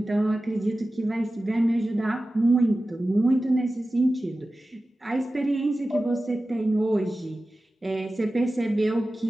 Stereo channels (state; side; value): normal; both; correlation 0.95